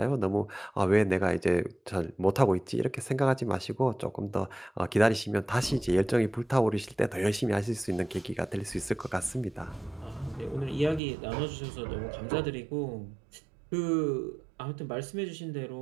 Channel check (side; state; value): left; drops out; at 11.0 s